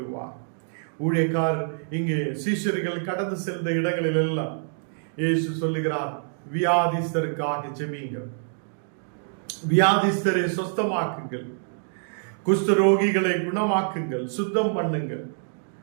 ஊழியக்காரர் இங்கே சீஷர்கள் கடந்து சென்ற இடங்களில் எல்லாம் இயேசு சொல்லுகிறார், வியாதிஸ்தருக்காக ஜெபியுங்கள், வியாதிஸ்தரை சுத்தமாக்குங்கள், குஷ்டரோகிகளை குணமாக்குங்கள், சுத்தம் பண்ணுங்கள்,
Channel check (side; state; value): left; silent; digital silence